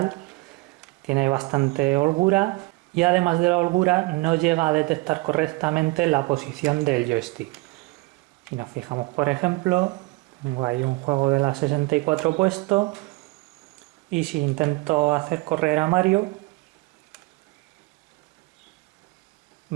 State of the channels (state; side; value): quieter; left; 23.8 dB